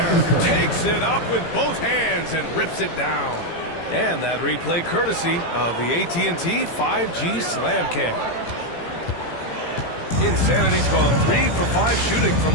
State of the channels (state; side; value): late; right; 18 ms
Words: Takes it up with both hands and rips it down. And that replay courtesy of the AT&T 5G Slam Cam. Insanity's gone 3 for 5 shooting from